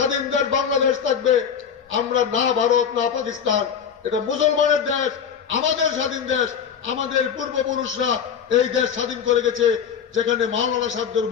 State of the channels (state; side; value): quieter; right; 7.4 dB